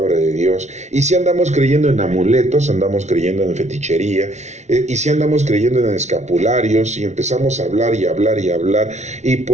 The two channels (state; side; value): late; left; 0.33 ms